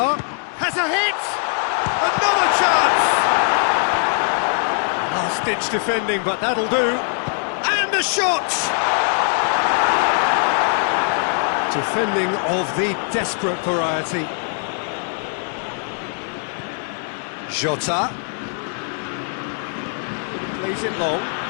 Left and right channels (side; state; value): right; silent; 56 dB below the other